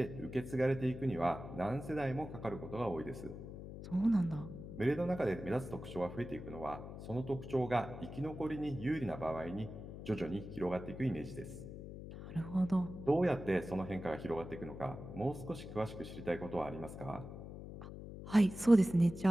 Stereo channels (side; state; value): left; noise; hum, 11 dB below the sound